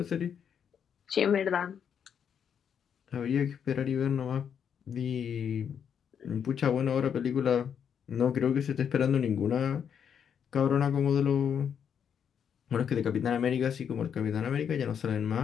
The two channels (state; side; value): quieter; right; 7.9 dB